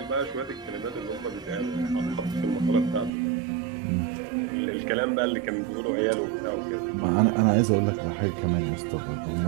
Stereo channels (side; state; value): left; drops out; at 3.1 s